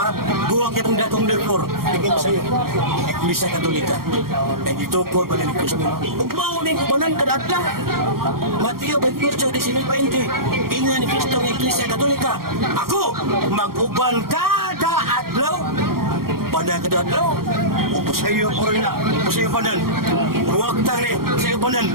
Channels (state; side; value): late; left; 0.93 ms